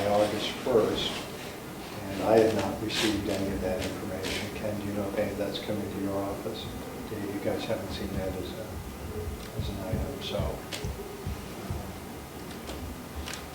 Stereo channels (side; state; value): both; identical; correlation 1.00